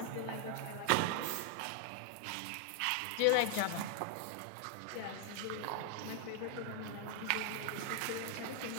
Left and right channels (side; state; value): both; different; correlation 0.00